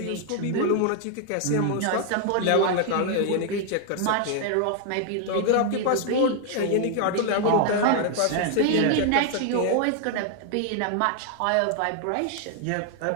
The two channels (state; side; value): different; both; correlation 0.00